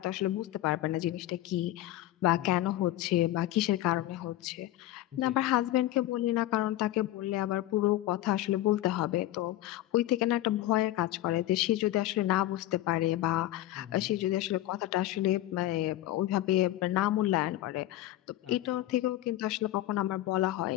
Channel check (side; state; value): right; quieter; 14.8 dB